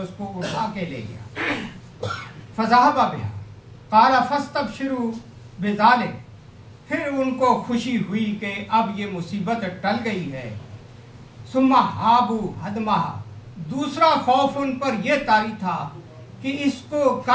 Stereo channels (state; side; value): identical; both; correlation 1.00